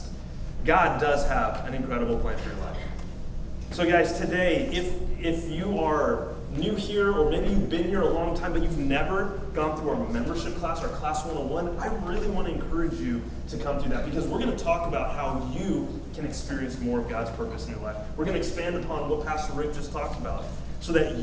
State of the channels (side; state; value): both; identical; correlation 1.00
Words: God does have an incredible plan for your life. So guys, today, if you are new here, or maybe you've been here a long time, but you've never gone through our membership class, our Class 101, I really want to encourage you to come through that, because we're going to talk about how you can experience more of God's purpose in your life. We're going to expand upon what Pastor Rick just talked about, so that